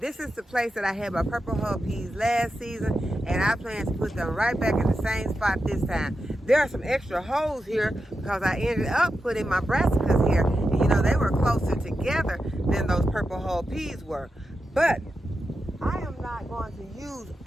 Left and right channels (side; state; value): both; normal; correlation 0.89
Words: is the place that I had my purple hull peas last season, and I plan to put them right back in the same spot this time. There are some extra holes here because I ended up putting my brassicas here, and you know, they were closer together than those purple hull peas were. But I am not going to use